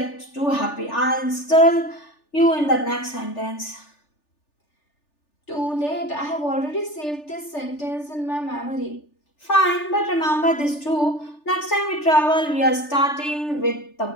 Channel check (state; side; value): late; right; 3.4 ms